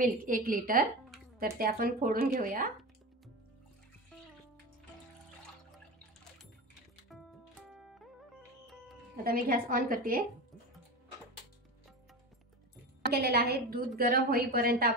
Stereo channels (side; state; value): both; normal; correlation 0.25